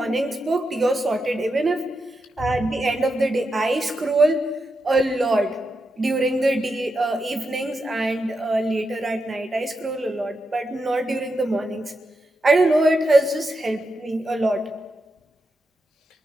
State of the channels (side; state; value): both; normal; correlation 0.86